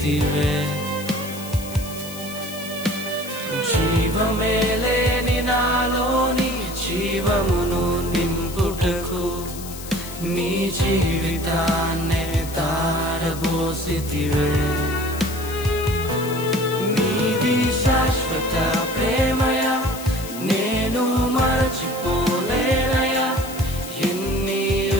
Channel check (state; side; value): noise; left; hiss, 13 dB below the sound